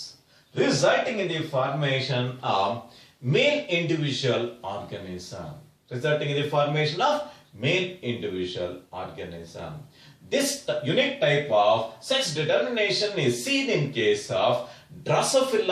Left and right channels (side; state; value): both; identical; correlation 1.00